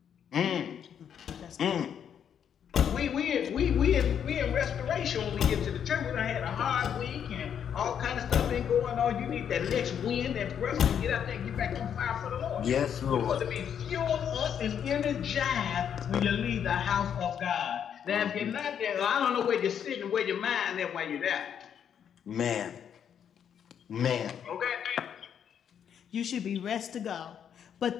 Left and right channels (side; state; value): right; quieter; 8.5 dB